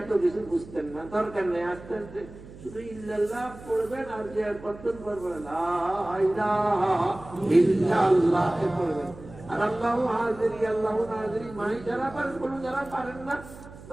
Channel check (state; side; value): noise; right; hum, 17 dB below the sound